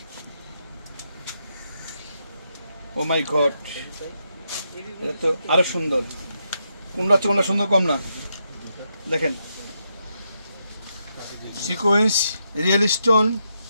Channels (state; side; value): inverted; both; correlation -0.82